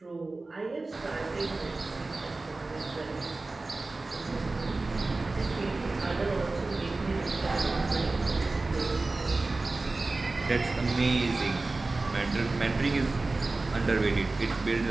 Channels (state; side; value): quieter; left; 3.4 dB